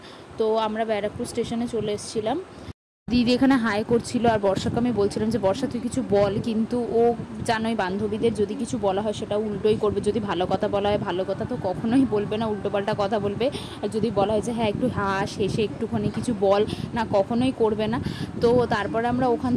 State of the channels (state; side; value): identical; both; correlation 1.00